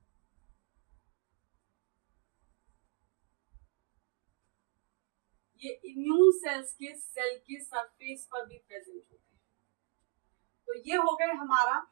ये इम्यून सेल्स के सेल के सरफेस पर भी प्रेजेंट होते हैं। तो ये हो गए हमारा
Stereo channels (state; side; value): quieter; left; 31.5 dB